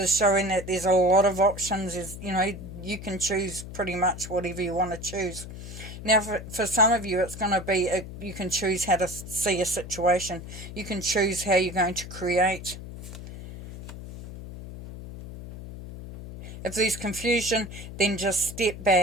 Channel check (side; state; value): left; noise; hum, 11 dB below the sound